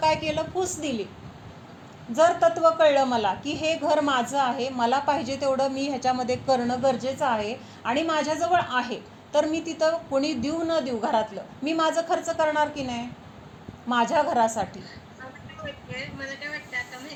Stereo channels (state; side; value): identical; both; correlation 1.00